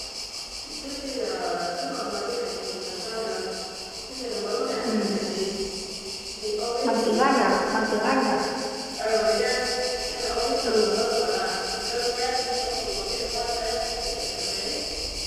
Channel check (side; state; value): both; identical; correlation 1.00